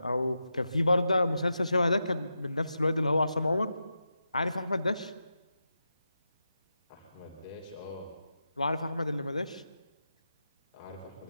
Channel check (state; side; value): inverted; both; correlation -0.88